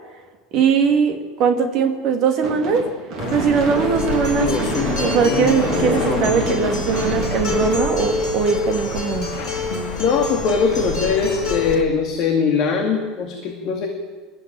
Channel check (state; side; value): normal; both; correlation 0.31